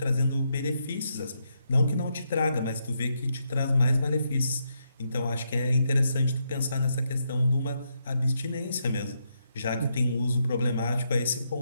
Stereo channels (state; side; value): inverted; both; correlation -0.80